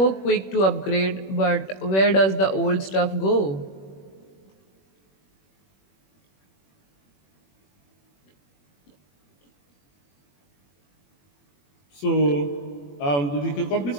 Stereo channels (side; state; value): right; late; 21 ms